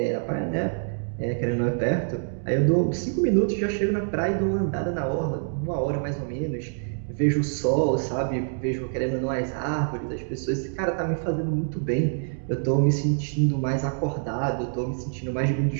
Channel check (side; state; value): left; silent; digital silence